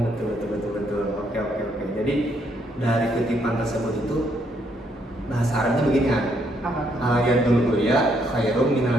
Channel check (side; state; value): both; normal; correlation 0.72